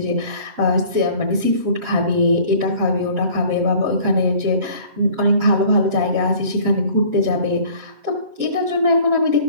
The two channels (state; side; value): late; left; 7.8 ms